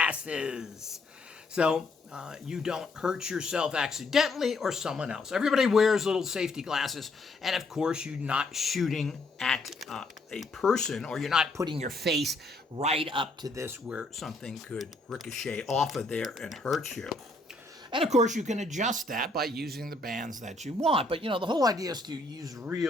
so you don't hurt yourself accidentally or someone else. Everybody wears little safety glasses, and of course, you're not shooting at a person, or you're not putting your face right up to this where something could ricochet off of there and hurt you. And of course, you can adjust that by using the bands that you want. But, you know, the whole idea is to use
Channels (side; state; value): right; quieter; 3.0 dB